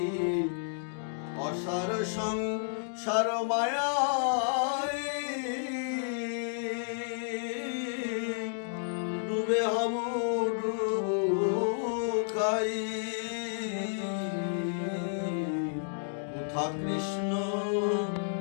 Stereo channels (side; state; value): right; silent; digital silence